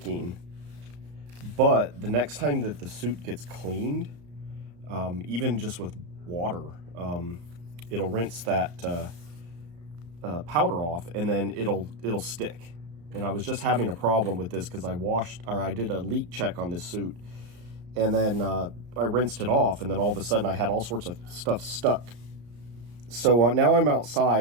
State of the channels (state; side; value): late; left; 34 ms